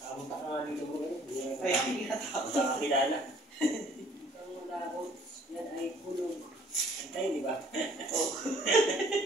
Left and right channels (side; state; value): both; normal; correlation 0.57